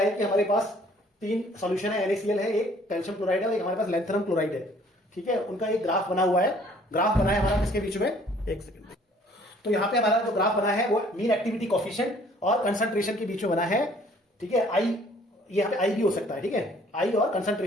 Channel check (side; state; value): both; normal; correlation 0.57